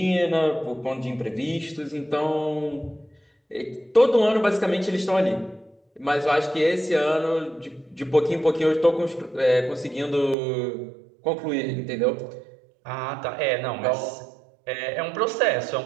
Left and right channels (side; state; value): left; drops out; at 10.4 s